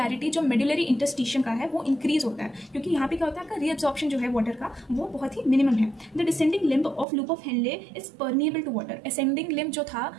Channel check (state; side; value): drops out; left; at 7.1 s